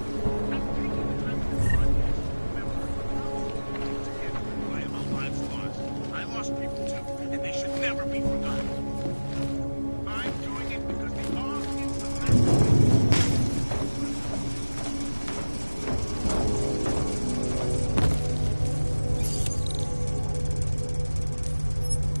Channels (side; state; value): both; inverted; correlation -1.00